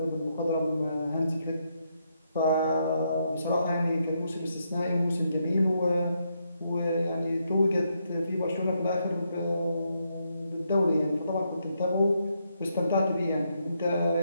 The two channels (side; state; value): both; inverted; correlation -0.78